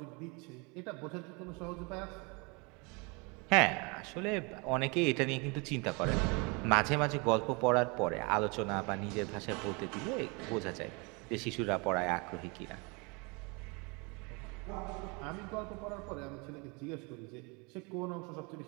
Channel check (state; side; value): quieter; left; 29.7 dB